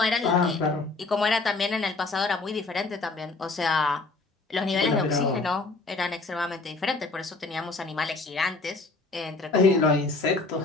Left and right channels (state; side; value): quieter; right; 3.6 dB